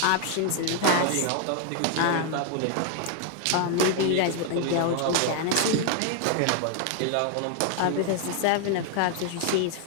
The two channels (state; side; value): different; both; correlation 0.00